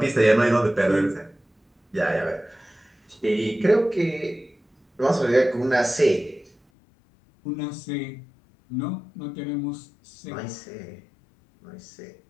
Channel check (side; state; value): right; drops out; at 6.6 s